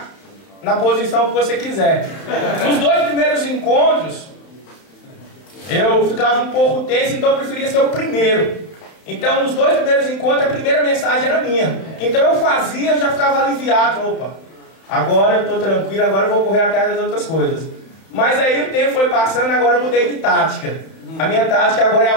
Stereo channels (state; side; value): late; right; 31 ms